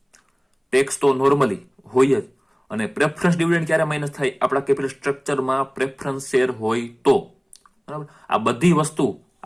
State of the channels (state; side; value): identical; both; correlation 1.00